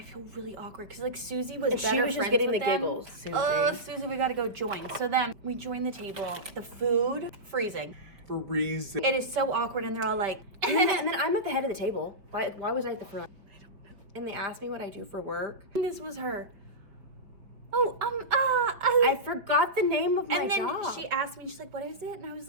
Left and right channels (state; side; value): late; left; 5.2 ms